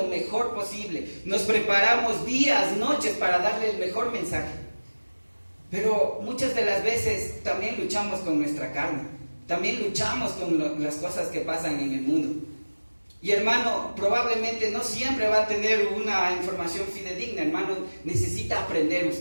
mejor posible, nos preparamos días, noches para darle el mejor mensaje, pero muchas de las veces también luchamos con nuestra carne, también luchamos con las cosas que pasan en el mundo. Y hermano, probablemente no siempre va a tener una información fidedigna, hermano, necesita aprender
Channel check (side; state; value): both; inverted; correlation -1.00